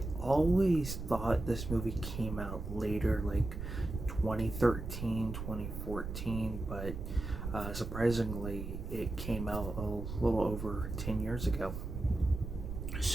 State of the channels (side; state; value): right; noise; rumble, 6 dB below the sound